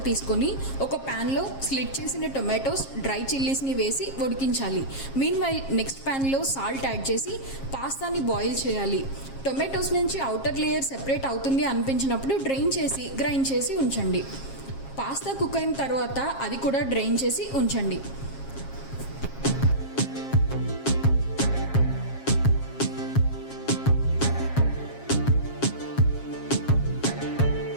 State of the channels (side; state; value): right; late; 7.4 ms